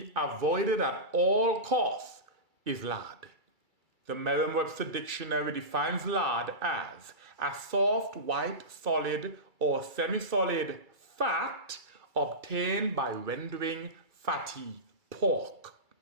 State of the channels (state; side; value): late; left; 2.3 ms